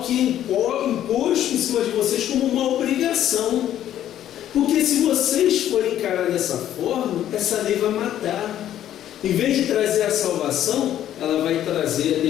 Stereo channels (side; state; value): right; quieter; 11.5 dB